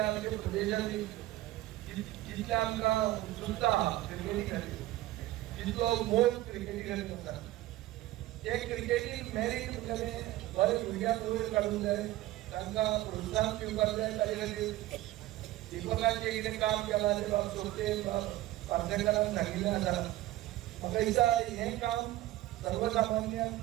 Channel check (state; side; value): quieter; left; 16.0 dB